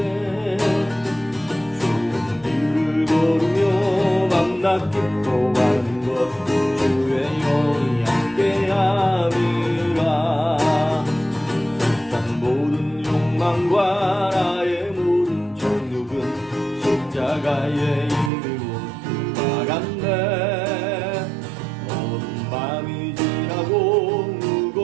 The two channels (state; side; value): drops out; left; at 18.3 s